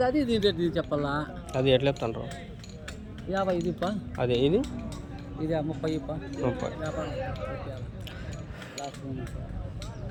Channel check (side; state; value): both; identical; correlation 1.00